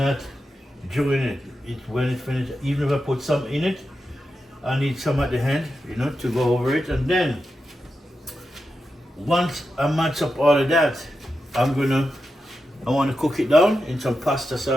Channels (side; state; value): both; normal; correlation 0.89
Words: during it. It's when it finished. Even if I put some in it, I need some at the end, you know, to go over it. And then once I match up all of that, I want to cook it down in some pasta